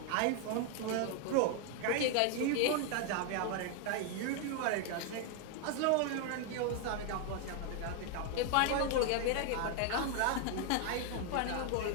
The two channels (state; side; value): different; both; correlation 0.01